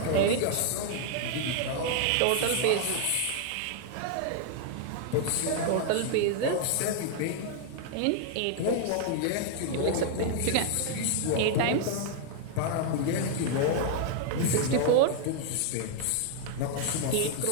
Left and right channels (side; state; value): both; different; correlation 0.00